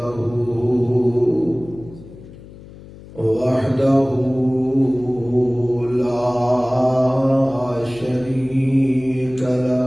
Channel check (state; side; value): noise; left; hum, 18 dB below the sound